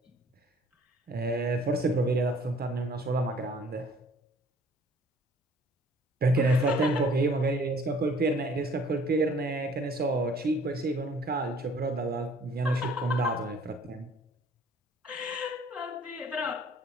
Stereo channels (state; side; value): normal; both; correlation 0.56